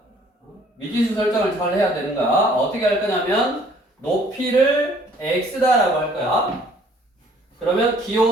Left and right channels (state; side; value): normal; both; correlation 0.58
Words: 잘 해야 되는 거야. 어떻게 할 거냐면 높이를 x다라고 할 거야. 그러면